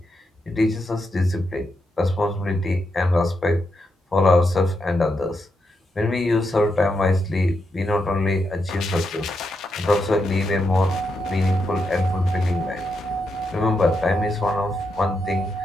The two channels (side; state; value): both; normal; correlation 0.83